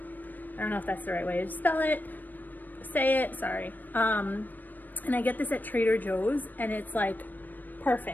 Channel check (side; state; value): right; late; 0.088 ms